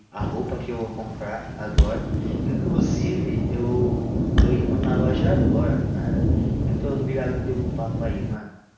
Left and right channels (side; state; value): both; identical; correlation 1.00